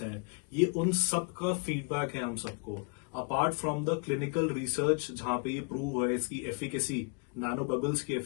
हैं, ये उन सब का फीडबैक है हम सबको। Apart from the clinical research जहां पे ये प्रूव है इसकी एफिकेसी, नैनो बबल्स की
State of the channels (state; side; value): quieter; right; 37.5 dB